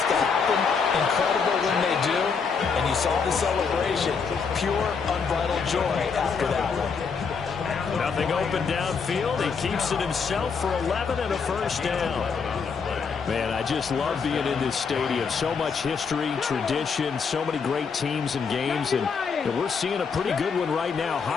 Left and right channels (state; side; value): quieter; right; 5.6 dB